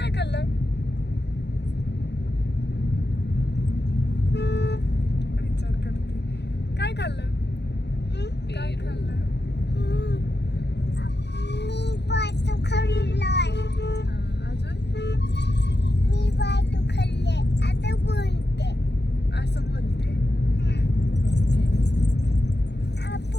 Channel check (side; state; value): right; late; 0.50 ms